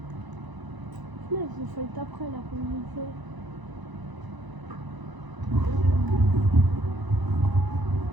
Là, j'ai fait après la communauté.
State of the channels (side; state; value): left; late; 1.0 ms